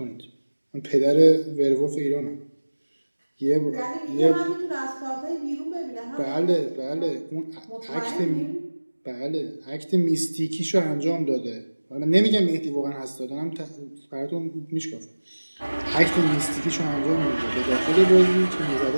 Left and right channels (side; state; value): both; inverted; correlation -1.00